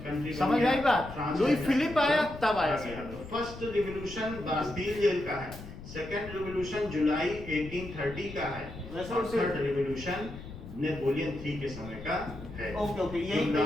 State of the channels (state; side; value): noise; left; rumble, 13 dB below the sound